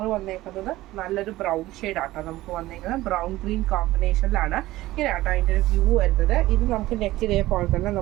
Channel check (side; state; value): left; quieter; 16.9 dB